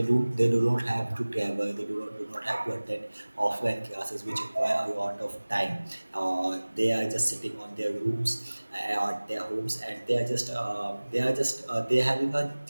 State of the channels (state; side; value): inverted; both; correlation -1.00